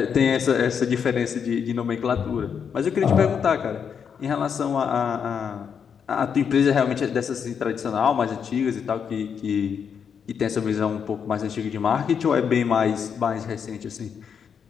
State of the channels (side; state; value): right; quieter; 7.1 dB